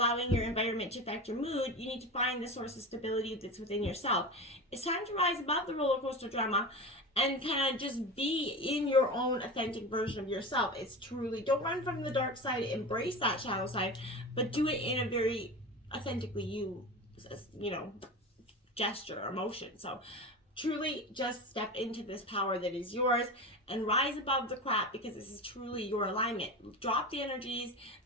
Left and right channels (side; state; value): both; normal; correlation 0.27